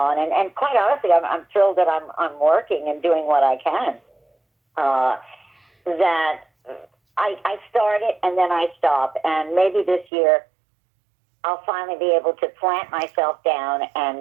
and quite honestly, I'm thrilled that I'm working and doing what I can. That I start it and then I stop, and maybe this year I'll finally be able to plant myself down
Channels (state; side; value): drops out; left; at 10.1 s